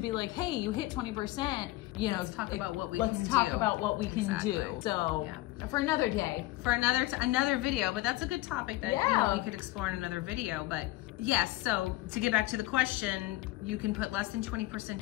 like, hey, you hit 20%, you know, let's talk about what we can do. Let's talk about what we can do. So for another day. For another video, but that's a good topic that you know, we could explore in another video. But yes, so to get back to the question, you can put less than 20%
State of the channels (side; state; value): right; quieter; 18.3 dB